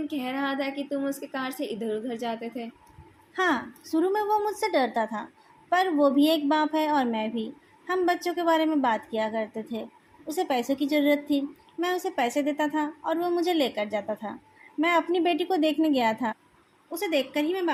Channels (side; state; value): both; identical; correlation 1.00